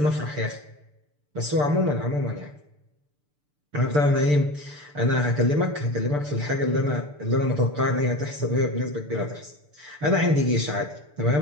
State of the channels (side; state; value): left; late; 6.8 ms